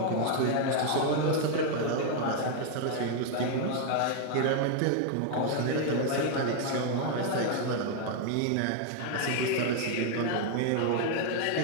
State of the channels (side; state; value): both; different; correlation 0.00